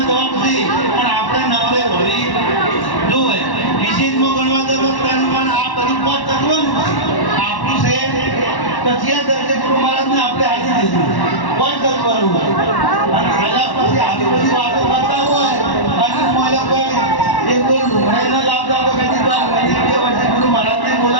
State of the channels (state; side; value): late; right; 1.1 ms